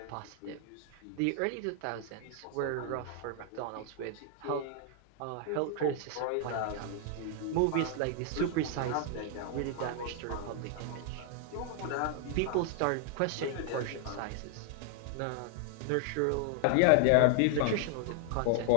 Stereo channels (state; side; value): different; both; correlation 0.00